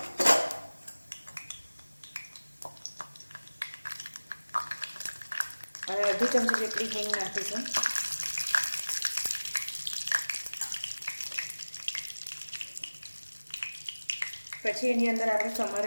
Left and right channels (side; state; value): both; inverted; correlation -1.00